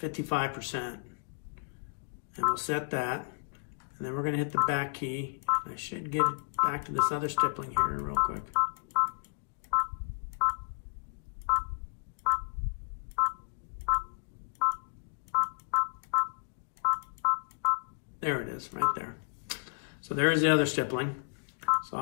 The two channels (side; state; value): right; silent; digital silence